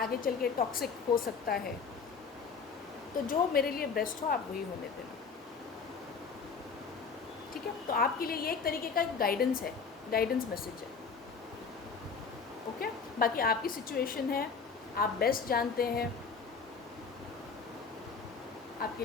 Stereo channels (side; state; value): right; quieter; 5.4 dB